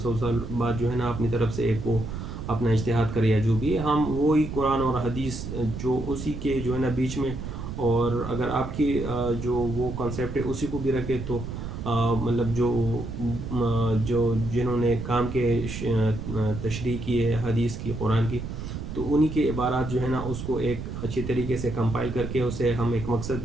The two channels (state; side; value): noise; right; rumble, 7 dB below the sound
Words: سال بعد جو ہے نا اپنی طرف سے ایک وہ اپنا اجتہاد کرے یا جو بھی ہے، ہم وہی قرآن اور حدیث جو اسی کے جو ہے نا بیچ میں، اور اگر آپ کی جو وہ کنسیپٹ ہے اسی کو بھی رکھے تو مطلب جو جنہوں نے کام کے تشریح کی ہے حدیث کی، قرآن کی، تو انہی کے عبارات جو ہے نا اس کو ایک اچھی طریقے سے کمپائل کر کے اسے ہم ایک مقصد